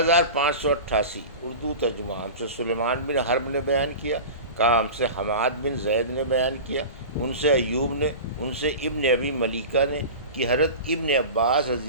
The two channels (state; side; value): inverted; both; correlation -0.32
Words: اردو ترجمہ۔ ہم سے سلیمان بن حرب نے بیان کیا، کہا ہم سے حماد بن زید نے بیان کیا، ان سے ایوب نے، ان سے ابن ابی ملیکہ نے کہ حضرت ابن عباس